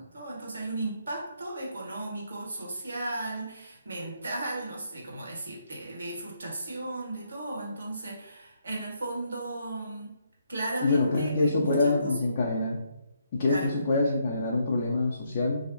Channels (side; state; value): both; inverted; correlation -0.74